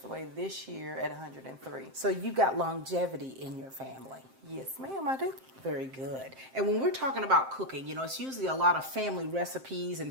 away this year at 103. So you got longevity in your family. Yes, ma'am, I do. Very good. And when we're talking about cooking, you know, it's usually a lot of family recipes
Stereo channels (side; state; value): left; late; 7.6 ms